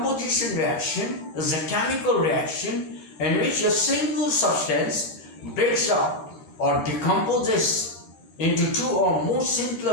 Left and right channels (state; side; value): late; right; 14 ms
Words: reaction is a chemical reaction in which a single substance breaks up or decomposes into two or more